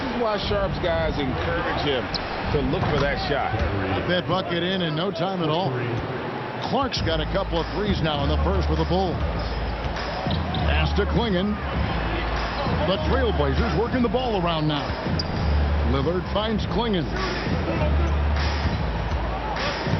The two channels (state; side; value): identical; both; correlation 1.00